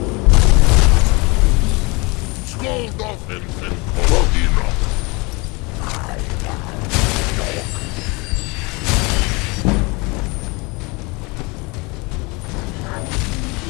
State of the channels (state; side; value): quieter; right; 27.1 dB